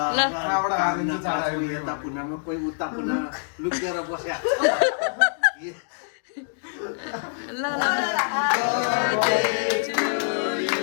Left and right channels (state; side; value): silent; right; digital silence